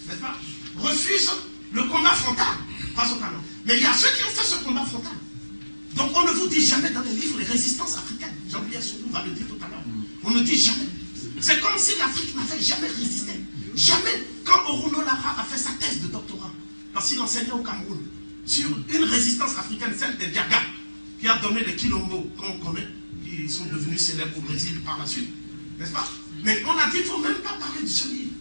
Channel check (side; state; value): both; inverted; correlation -1.00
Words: N'est-ce pas? Refusent le combat frontal face au canon. Mais il y a ceux qui ont fait ce combat frontal. Donc on ne vous dit jamais dans les livres les résistances africaines. Jean-Pierre Soulou va le dire tout à l'heure. On ne dit jamais. C'est comme si l'Afrique n'avait jamais résisté. Jamais. Quand Oruno Lara a fait sa thèse de doctorat, parce qu'il enseignait au Cameroun, sur une résistance africaine, celle des Diaga, qui a donné les Quilombo, qu'on connaît, qui sont devenus célèbres au Brésil par la suite. N'est-ce pas? Mais on a dit qu'il ne faut même pas parler de ce livre.